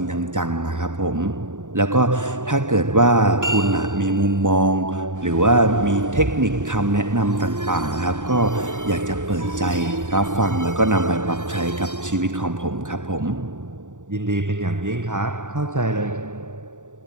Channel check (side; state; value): left; late; 0.86 ms